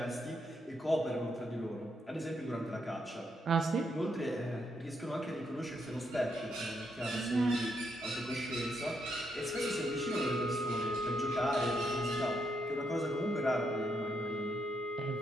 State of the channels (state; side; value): normal; both; correlation 0.78